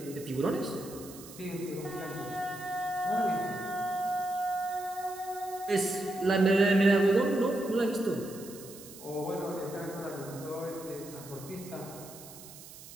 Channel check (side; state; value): right; noise; hiss, 16 dB below the sound